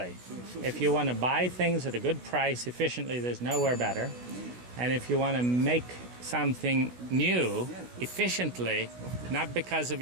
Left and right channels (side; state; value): left; late; 16 ms